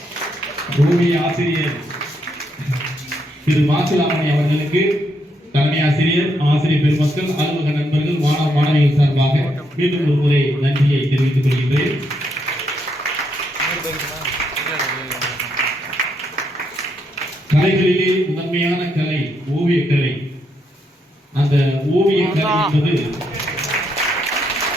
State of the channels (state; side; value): normal; both; correlation 0.77